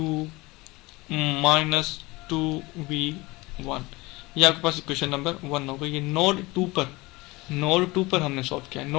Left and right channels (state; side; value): quieter; right; 22.4 dB